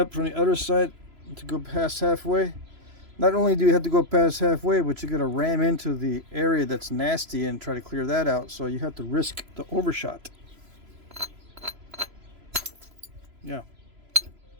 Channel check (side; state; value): left; late; 3.0 ms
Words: from the other side to go past halfway, not only do you have to go past halfway, but you're going to ram into the area that's nasty and try to clear that out, so you have to risk the overshot. Yeah.